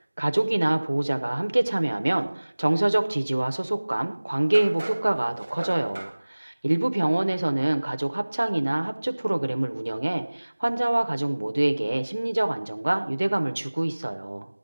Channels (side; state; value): both; inverted; correlation -1.00